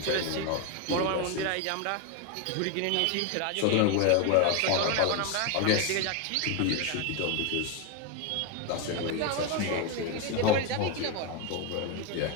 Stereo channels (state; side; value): different; both; correlation 0.02